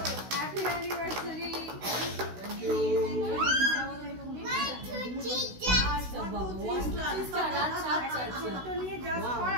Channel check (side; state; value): left; late; 16 ms